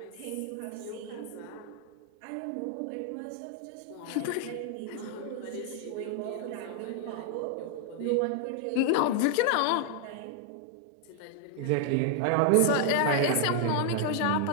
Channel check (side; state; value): both; different; correlation 0.00